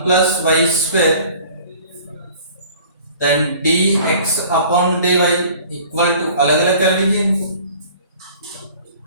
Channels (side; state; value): both; inverted; correlation -0.48